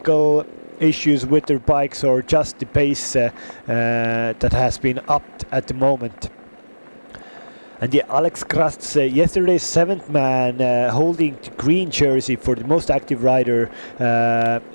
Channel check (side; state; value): both; inverted; correlation -1.00